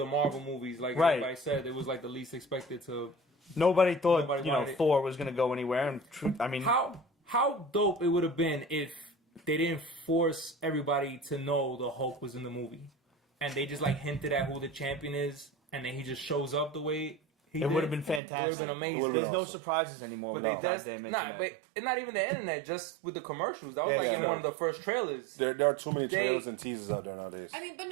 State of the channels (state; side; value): drops out; left; at 18.2 s